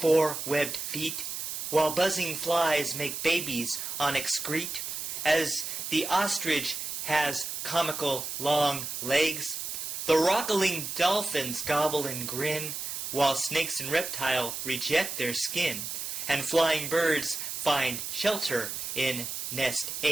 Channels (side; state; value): right; noise; hiss, 5 dB below the sound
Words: webbed feet, while buzzing flies make babies on excrete, as the ostrich has comical long legs. The rockling dolphins gobble and grin, while snakes and reptile reject their skin, and flying birds find shelter in nest